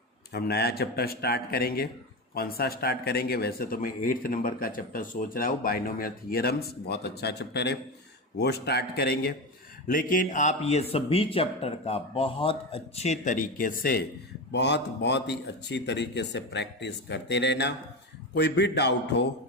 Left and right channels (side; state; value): both; normal; correlation 0.19